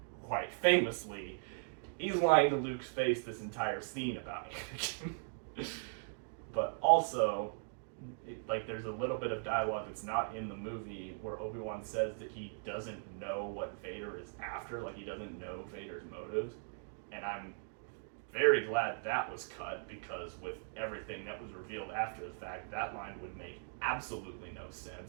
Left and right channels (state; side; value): silent; left; digital silence